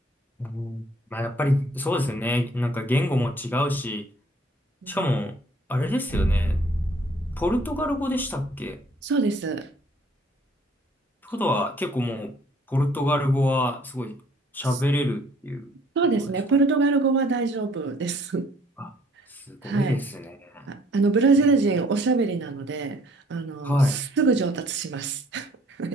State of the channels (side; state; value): both; normal; correlation 0.58